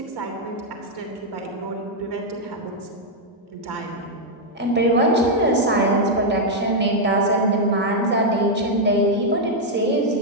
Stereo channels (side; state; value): both; normal; correlation -0.02